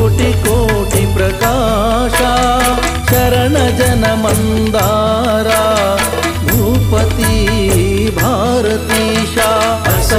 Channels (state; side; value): identical; both; correlation 1.00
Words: ಕೋಟಿ ಪ್ರಕಾಶ. ಶರಣ ಜನ ಮಂದಾರ ಭೂಪತಿ ಭಾರತೀಶ.